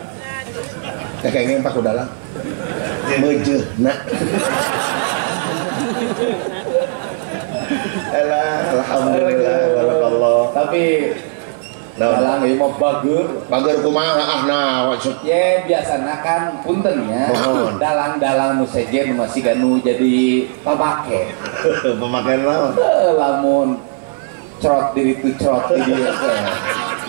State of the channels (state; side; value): silent; left; digital silence